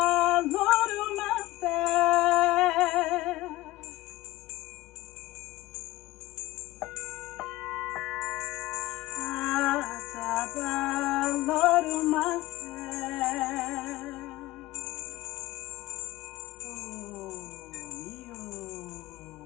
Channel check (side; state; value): right; quieter; 17.9 dB